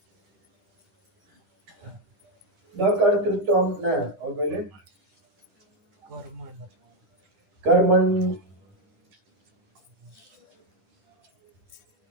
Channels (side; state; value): left; late; 10 ms